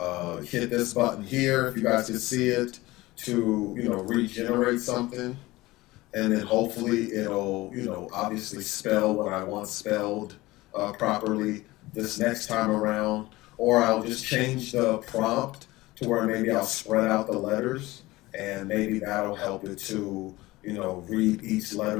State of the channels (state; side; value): quieter; right; 19.4 dB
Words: hit this button here, if you guys can see it, to regenerate something, and then hopefully it'll obviously spell what I want spelled properly this next time around, or I'll just change the prompt to where maybe I'll spread out the letters, and maybe that'll help it to, read each